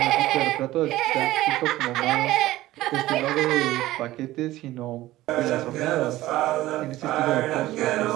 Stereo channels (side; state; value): left; quieter; 16.3 dB